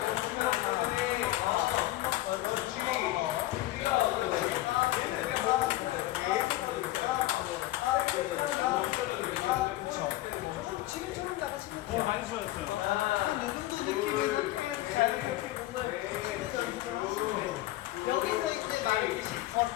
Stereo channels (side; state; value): right; quieter; 16.6 dB